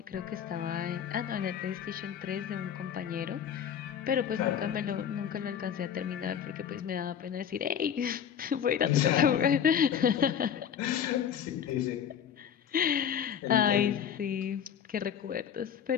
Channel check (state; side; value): quieter; right; 8.5 dB